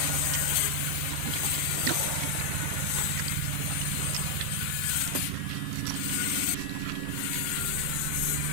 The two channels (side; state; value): both; different; correlation 0.00